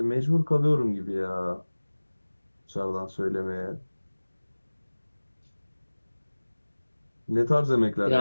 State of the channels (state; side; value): inverted; both; correlation -1.00